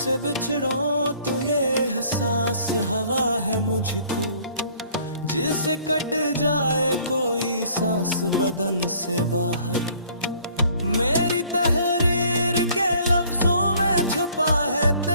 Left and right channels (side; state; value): both; inverted; correlation -0.57